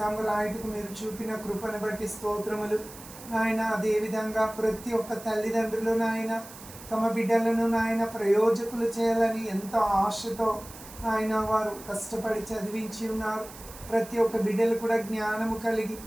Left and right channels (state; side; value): noise; right; hiss, 17 dB below the sound